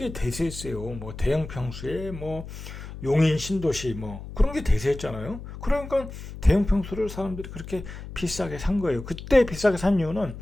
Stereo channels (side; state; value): left; noise; hum, 11 dB below the sound